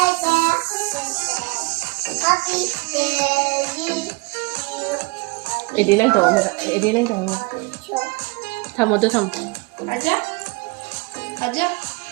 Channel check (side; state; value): left; quieter; 27.6 dB